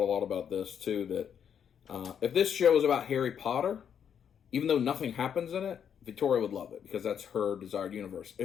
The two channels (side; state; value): right; quieter; 8.2 dB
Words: a lot about this too, that if this show is about Harry Potter, even though nothing happens in it, Victoria would love it because that's her desired universe.